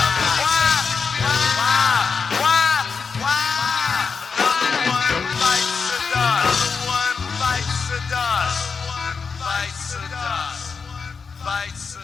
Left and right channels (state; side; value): quieter; right; 5.3 dB